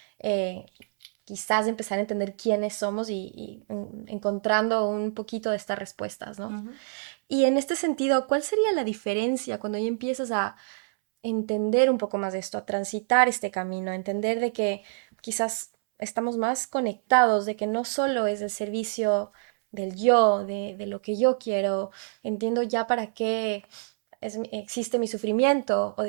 quizás empezar a entender quiénes somos y encontrando un poquito de estas respuestas, ¿no? Y en este sentido, ¿cuál sería la diferencia cuando ya empiezas a entender un poco más de esto, a transitar este camino, a entender de que quizás estamos más conectados, de que no solo es el servicio del yo, de lo que yo quiero, entiendo ya para qué existe mi sufrimiento o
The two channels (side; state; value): left; silent; 60 dB below the other